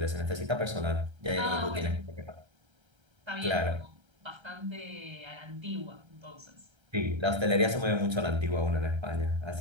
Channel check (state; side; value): late; left; 1.3 ms